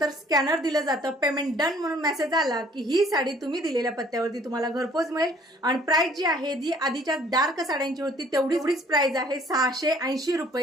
स्कॅनर दिलं जातं. पेमेंट डन म्हणून मेसेज आला की ही साडी तुम्ही दिलेल्या पत्त्यावरती तुम्हाला घरपोच मिळेल. आणि प्राइस जी आहे जी आधीच्या डार्क साड्यांची होती तेवढीच प्राइस आहे. 680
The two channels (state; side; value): normal; both; correlation 0.58